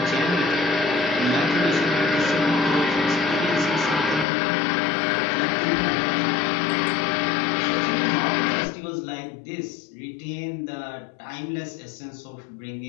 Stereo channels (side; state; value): right; drops out; at 4.2 s